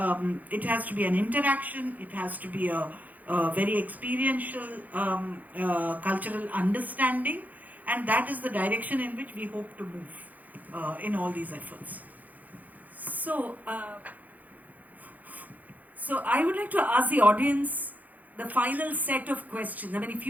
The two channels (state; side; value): late; left; 0.080 ms